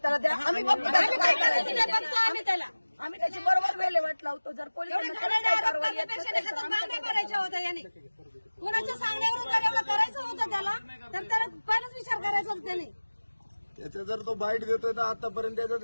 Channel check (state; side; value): inverted; both; correlation -1.00